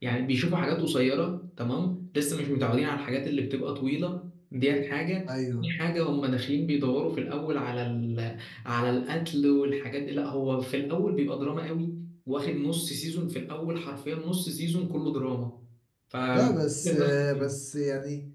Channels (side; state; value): both; identical; correlation 1.00